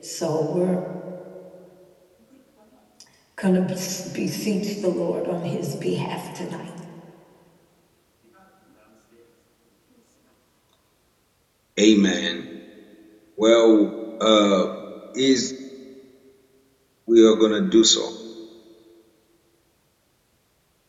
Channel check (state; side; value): identical; both; correlation 1.00